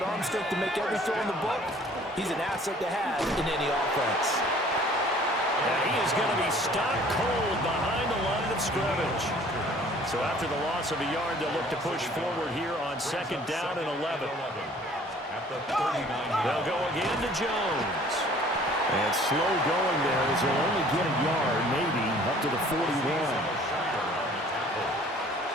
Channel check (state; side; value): normal; both; correlation 0.53